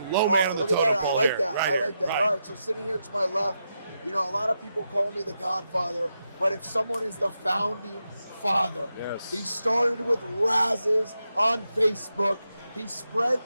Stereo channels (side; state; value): both; inverted; correlation -0.86